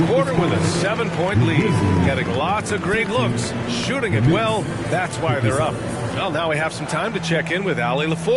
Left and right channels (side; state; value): both; identical; correlation 1.00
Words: quarter with a 7-point lead. Getting lots of great looks, shooting it well. That's why they're up. Well, now we have some time to check in with Allie